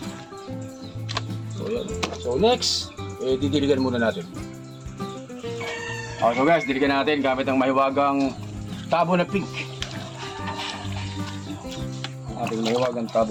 So yun. So next, didiligan muna natin. So guys, diligan natin gamit ang mahiwagang tabo na pink. Ating mahiwagang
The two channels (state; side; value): identical; both; correlation 1.00